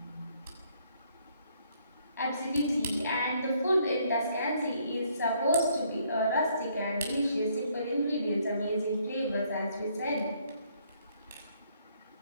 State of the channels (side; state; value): both; inverted; correlation -0.68